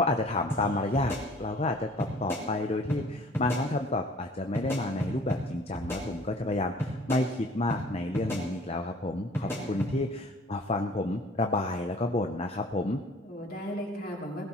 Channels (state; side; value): normal; both; correlation 0.51